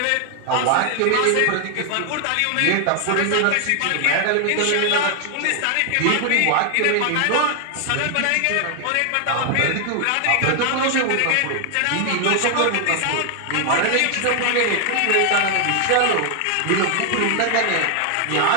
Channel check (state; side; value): different; both; correlation 0.00